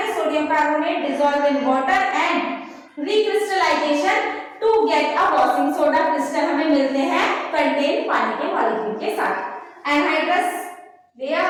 sodium carbonate dissolve in water and recrystallization to get a washing soda crystal हमें मिलते हैं कंटेन पानी के मॉलिक्यूल के साथ। एनहाइड्रस लिया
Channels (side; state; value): both; identical; correlation 1.00